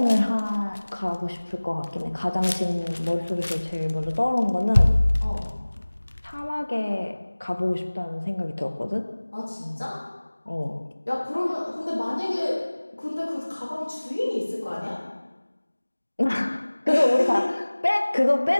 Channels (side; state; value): both; inverted; correlation -1.00